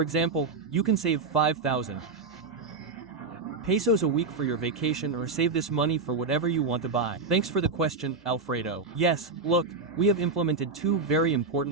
you can save 5,000 pesos a week for your vacation, or save this money for whatever you want to buy. Thanks for the question, Alfredo. Yes, look, we have implemented two very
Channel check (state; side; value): quieter; left; 4.1 dB